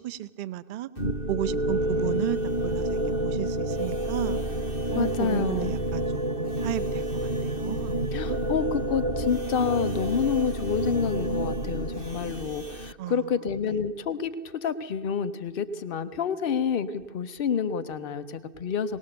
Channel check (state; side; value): late; right; 2.6 ms